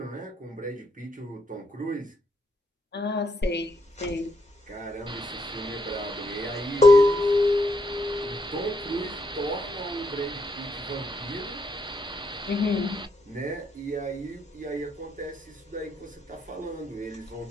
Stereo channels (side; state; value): both; normal; correlation 0.77